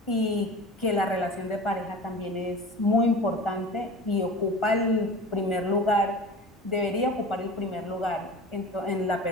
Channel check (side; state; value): both; normal; correlation 0.36